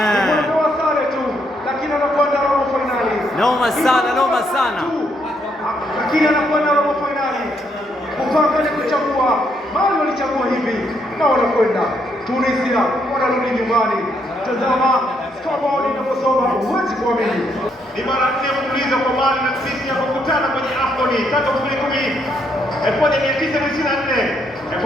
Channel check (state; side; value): normal; both; correlation 0.74